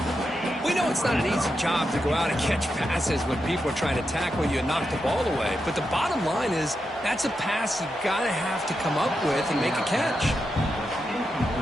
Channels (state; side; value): normal; both; correlation 0.86